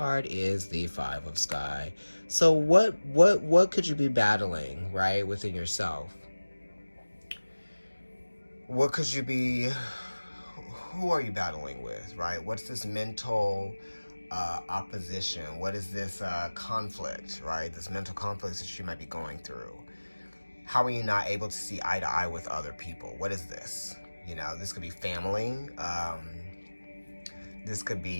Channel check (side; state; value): both; inverted; correlation -1.00